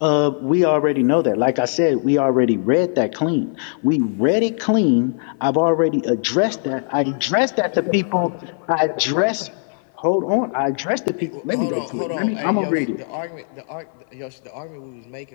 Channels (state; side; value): silent; right; 57 dB below the other